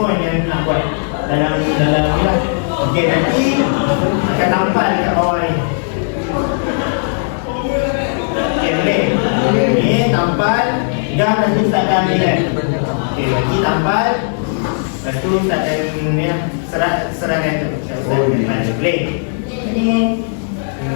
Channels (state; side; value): silent; right; 67 dB below the other